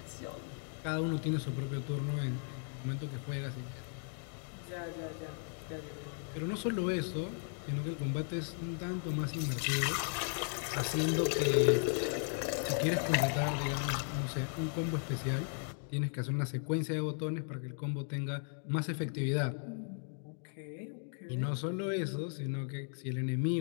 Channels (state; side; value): silent; right; 54 dB below the other